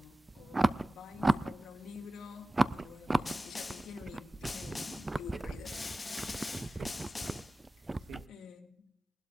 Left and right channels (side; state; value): both; normal; correlation 0.96